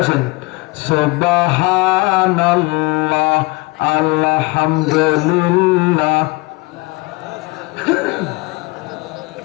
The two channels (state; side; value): quieter; right; 24.2 dB